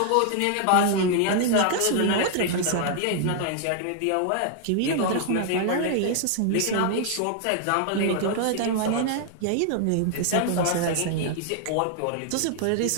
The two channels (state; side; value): different; both; correlation 0.00